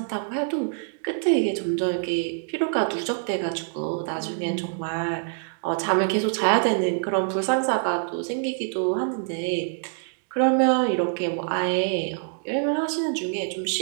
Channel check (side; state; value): left; silent; digital silence